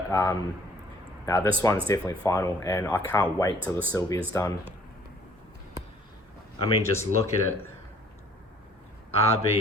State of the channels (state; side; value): normal; both; correlation 0.56